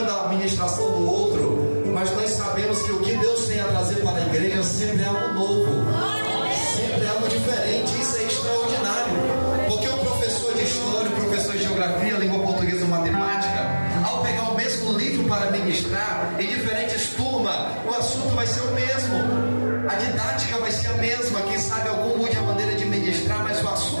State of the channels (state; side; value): inverted; both; correlation -1.00